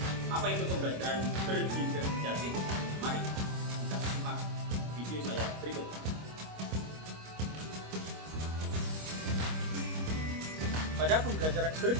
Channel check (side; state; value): left; late; 25 ms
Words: Apa itu pembelajaran berdiferensiasi? Mari kita simak video saya berikut. Pada pembelajaran